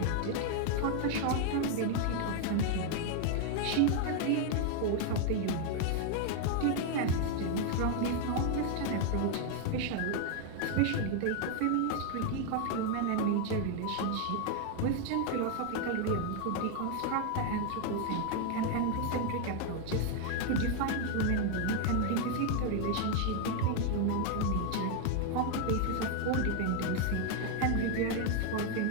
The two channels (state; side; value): different; both; correlation 0.00